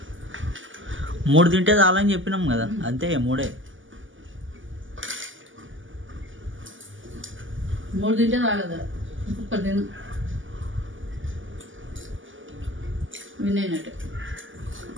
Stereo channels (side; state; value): left; late; 0.57 ms